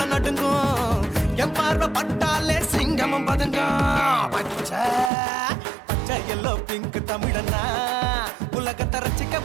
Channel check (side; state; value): left; drops out; at 5.1 s